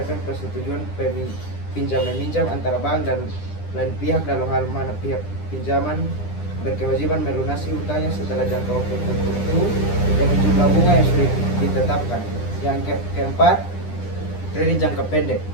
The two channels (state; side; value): late; right; 10 ms